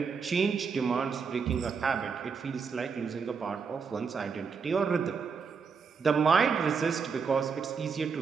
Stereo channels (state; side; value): quieter; left; 5.7 dB